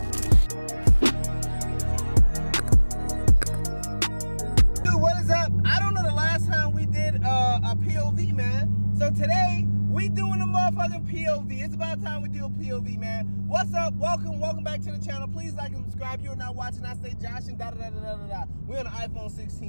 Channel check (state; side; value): inverted; both; correlation -1.00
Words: A POV, man. So today we doing a motherfucking POV. It's about time we do a POV, man. What's up? Welcome back to the channel. Please like and subscribe. You're not watching. I say Josh and da da da da da da. We're on the iPhone